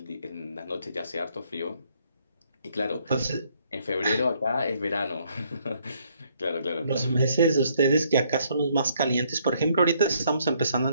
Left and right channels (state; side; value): inverted; both; correlation -0.68